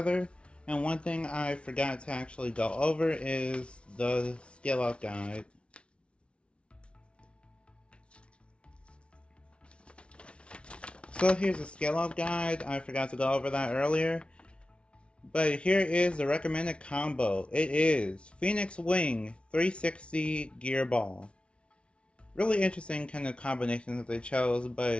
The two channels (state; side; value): late; right; 0.059 ms